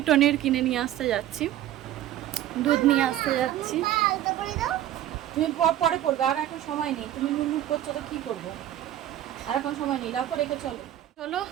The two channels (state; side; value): quieter; left; 12.6 dB